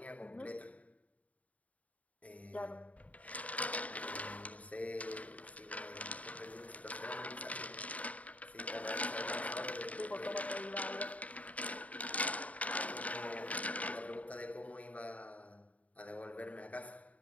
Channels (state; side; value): late; right; 0.069 ms